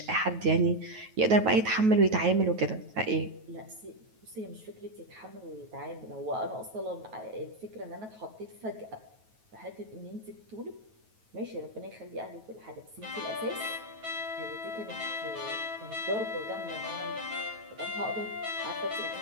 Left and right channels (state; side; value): late; left; 9.3 ms